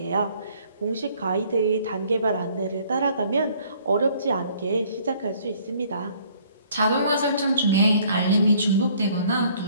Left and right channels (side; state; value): both; inverted; correlation -0.60